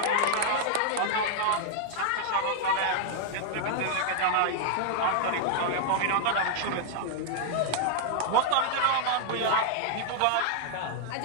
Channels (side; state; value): both; different; correlation -0.01